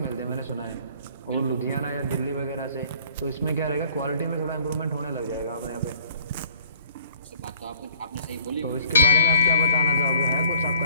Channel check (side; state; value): both; inverted; correlation -0.53